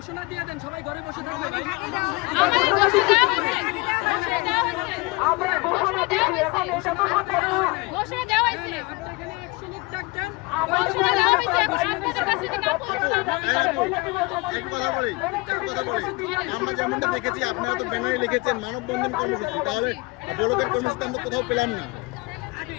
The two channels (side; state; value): right; quieter; 25.4 dB